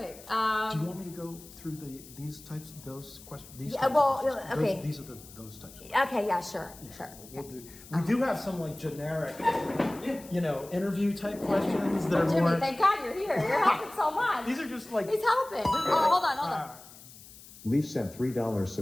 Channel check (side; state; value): left; noise; hiss, 19 dB below the sound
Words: Do you want me to go through those questions? These are those types. Okay, yeah, sure. We do have some like generic, interview type questions that are Jimmy, more. thank God you're here. You're helping so much. These are just like. He's helping. Oh, hold on. Leaf sent $3,